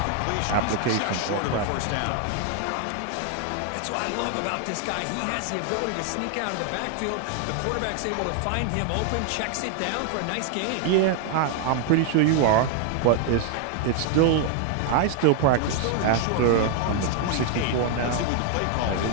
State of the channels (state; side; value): different; both; correlation 0.00